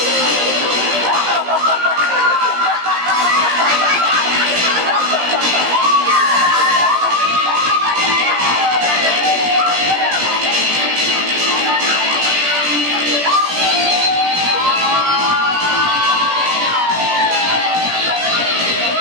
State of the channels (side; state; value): left; late; 17 ms